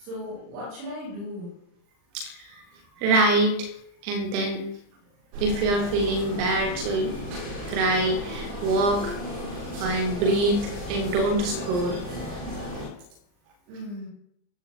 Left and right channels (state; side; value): late; left; 39 ms